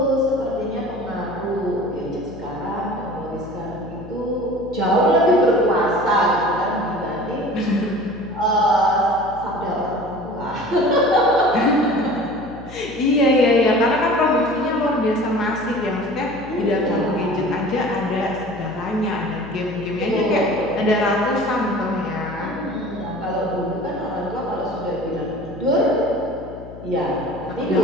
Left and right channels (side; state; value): left; noise; hum, 16 dB below the sound